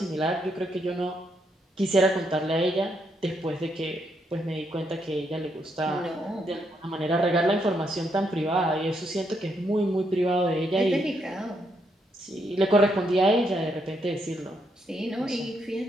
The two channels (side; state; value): both; normal; correlation 0.77